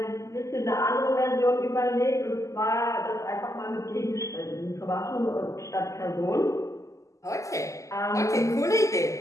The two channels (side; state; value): right; late; 0.16 ms